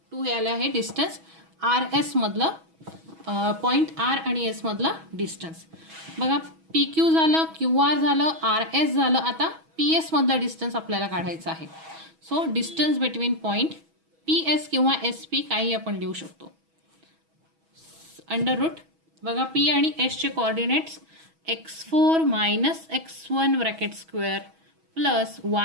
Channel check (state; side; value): late; left; 6.2 ms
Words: 2 हे आलं आहे डिस्टन्स आर एस मधलं पॉईंट आर आणि एस मधलं डिस्टन्स. बघा पी क्यू झालं क्यू आर झालं आर एस झालं. आता पी एस मधलं डिस्टन्स आपल्याला काढायचं आहे. So distance between point P S किंवा एस पी काही आपण लिहू शकतो. अंडर रूट बघा पी आणि एसचे coordinates x4 minus x1 bracket square plus